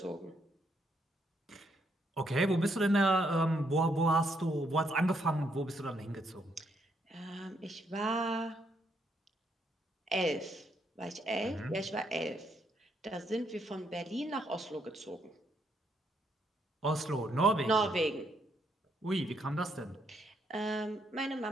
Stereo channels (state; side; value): normal; both; correlation 0.74